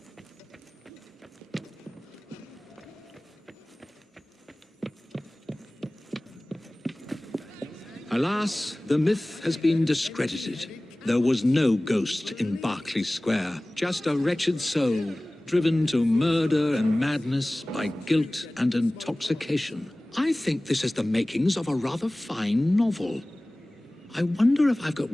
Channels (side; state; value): both; normal; correlation 0.98